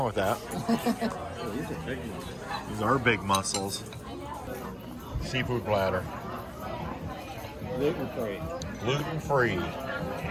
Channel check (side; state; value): both; identical; correlation 1.00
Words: with that. These are big ones. These are big mussels. Seafood platter. Gluten-free. Gluten-free.